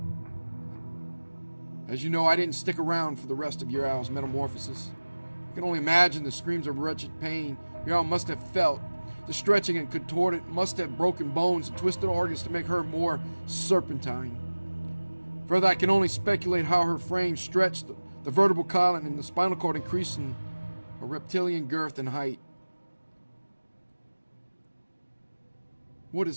As you know, I didn't stick around for the rest of your owl's metamorphosis. I can only imagine the screams of wretched pain your owl must have felt. The stretching and contorted must have broken bones and twisted organs to make her more serpentine. Further, I can only speculate how her frame stretched, the vertebral column and the spinal cord increasing a reptilian girth and height. What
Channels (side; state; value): both; inverted; correlation -1.00